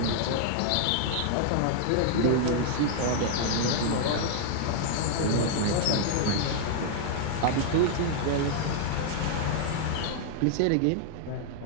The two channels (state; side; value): different; both; correlation -0.01